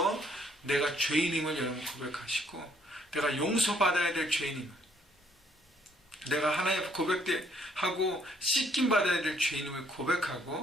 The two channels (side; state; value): both; normal; correlation 0.66